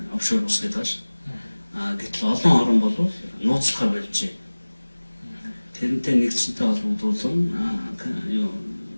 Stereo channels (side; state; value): both; inverted; correlation -1.00